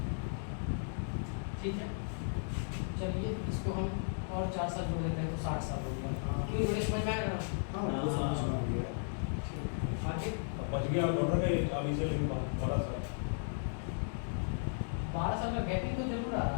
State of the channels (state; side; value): silent; right; digital silence